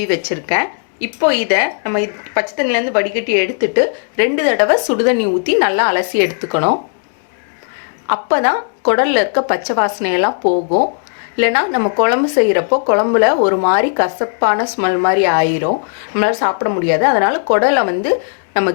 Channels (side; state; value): right; silent; 65 dB below the other